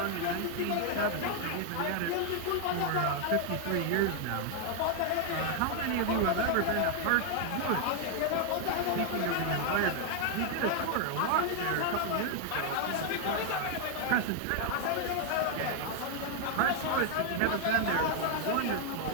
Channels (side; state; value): both; different; correlation 0.00